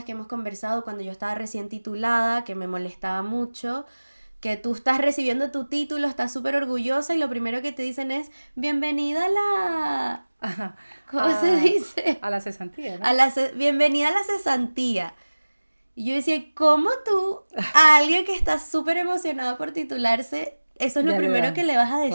que hemos conversado cuando yo estaba recién titulada, que me molestaba mucho, que tú estás recibiendo tu título, estás súper orgullosa y lo primero que te dicen es bienvenida a la... Ajá. ¿Cómo se dice? A la cesantía, ¿no? Bienvenida a la cesantía. Y yo decía, ¿cómo tú, a alguien que está súper emocionado por titularse, eso es lo Ya le primero dan, que le vas a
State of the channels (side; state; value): both; inverted; correlation -1.00